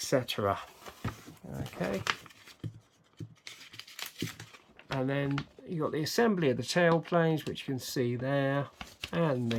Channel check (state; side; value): identical; both; correlation 1.00